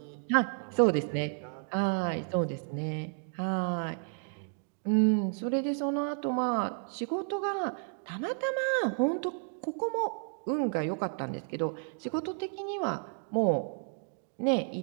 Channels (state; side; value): silent; left; 57 dB below the other